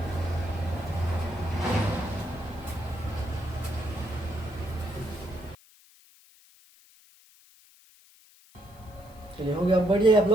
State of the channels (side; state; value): left; noise; hiss, 26 dB below the sound